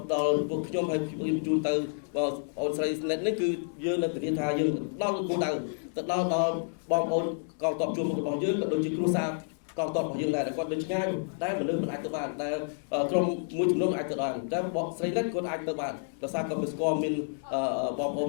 ពួកខ្ញុំហើយខ្ញុំជូនទៅបងអូនស្រីស្និតនេះគឺយើងនឹងធានាថាយើងដល់គោលដៅទៅដល់បងប្អូនកងទ័ពជួរមុខរបស់យើងក៏ដូចជាគ្រួសារកងទ័ពរបស់យើងដែរគាត់នៅឆ្ងាយតែមនុស្សមិនអាចទៅបានតែក្រុមមួយចំនួនអាចទៅបានតែបងស្រីស្និតគាត់អាចទៅបានដោយសារគាត់ស្គាល់មានបងប្អូន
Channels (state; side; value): silent; right; digital silence